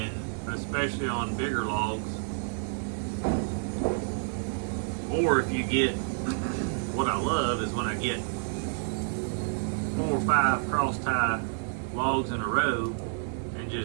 especially on bigger logs, or if you get, what I love is when I get 4 or 5 cross tie logs in a row and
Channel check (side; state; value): left; silent; 58 dB below the other